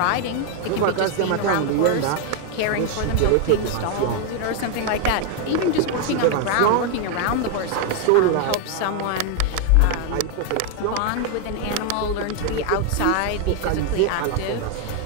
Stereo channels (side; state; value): both; different; correlation 0.01